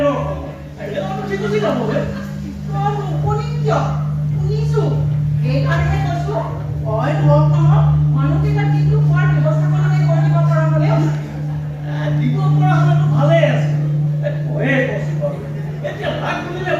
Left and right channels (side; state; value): both; identical; correlation 1.00